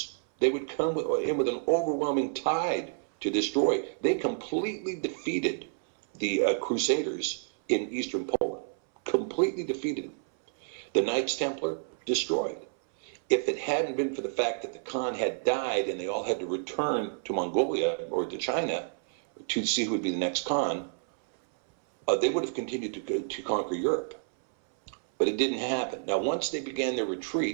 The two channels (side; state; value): left; silent; 58 dB below the other